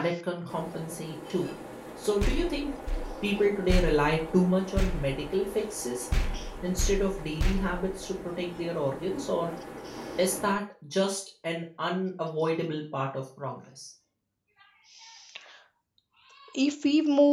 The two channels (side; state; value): both; identical; correlation 1.00